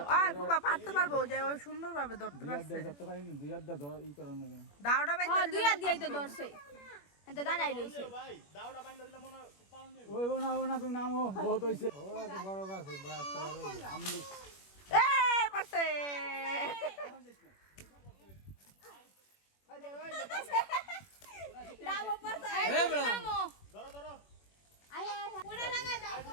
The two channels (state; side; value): late; right; 21 ms